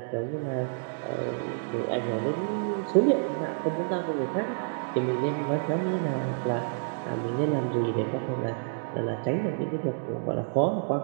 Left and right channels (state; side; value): silent; left; digital silence